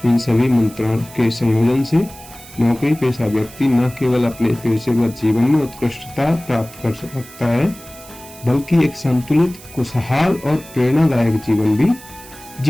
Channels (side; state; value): right; noise; hiss, 19 dB below the sound